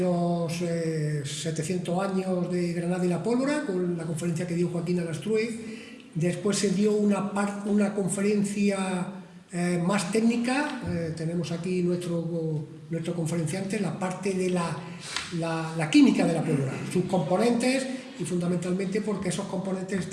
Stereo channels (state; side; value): identical; both; correlation 1.00